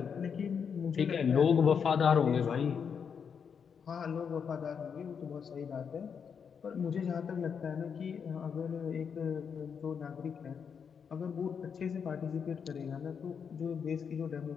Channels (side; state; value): right; quieter; 6.8 dB